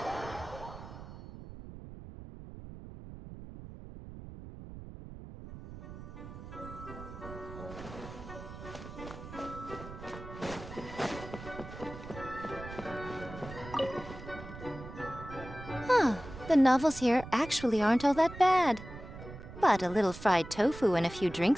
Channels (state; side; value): noise; right; rumble, 13 dB below the sound